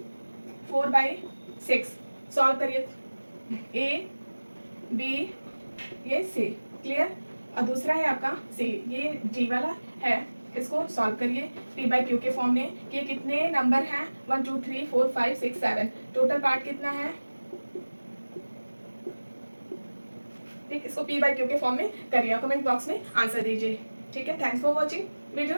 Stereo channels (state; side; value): inverted; both; correlation -1.00